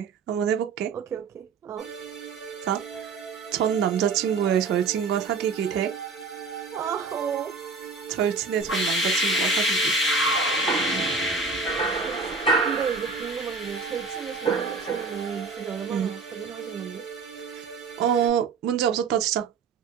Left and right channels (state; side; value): quieter; left; 4.6 dB